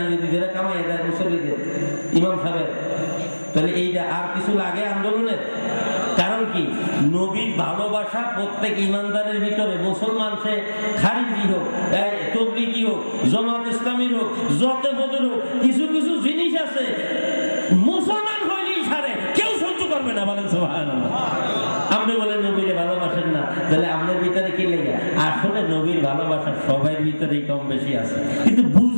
যদি ধরে কামাই দেয় মুসল্লিদের, ইমাম সাহেব, তাহলে এইটা আর কিছু লাগে আন্দোলনের? কারণ কি, নবীর ভালোবাসা প্রত্যেক ইমানদারের ভিতরে, মুসলমান সে খারিজি হোক, তবলিগি হোক, জামাত ইসলামীর হোক, যত বদর হোক, কিছু কিছু জিনিস আছে মুসলমান হইলেই ছাড়ে, কেউ সহ্য করবে না। বলেন সুবহানাল্লাহ। আপনি বলেন নবীরে ভালোবাসেন না, তাহলে আপনার ভিতরে কি লেগে? আসলে নবীর ভালোবাসা সবার ভিতরেই কম বেশি আছে, কিন্তু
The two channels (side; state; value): both; inverted; correlation -1.00